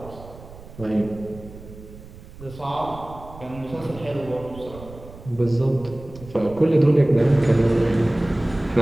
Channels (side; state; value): right; noise; rumble, 17 dB below the sound